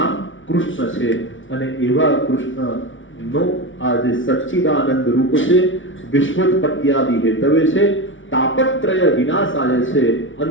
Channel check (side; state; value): right; late; 0.56 ms